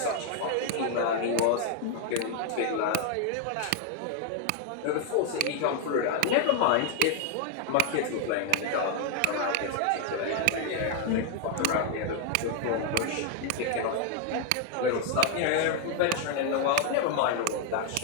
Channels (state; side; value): different; both; correlation 0.00